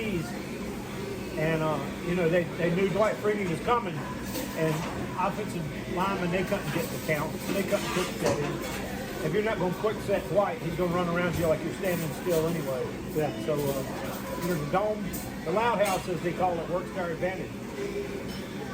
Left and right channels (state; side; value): identical; both; correlation 1.00